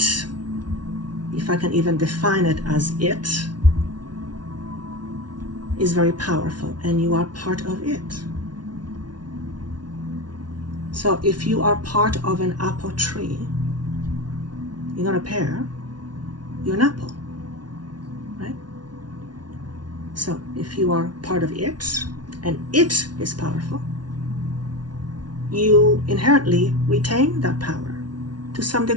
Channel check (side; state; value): left; late; 0.70 ms